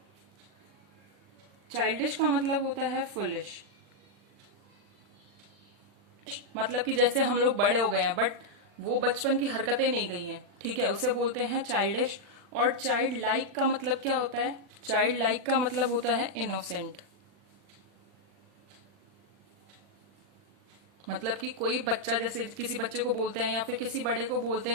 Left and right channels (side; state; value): left; late; 40 ms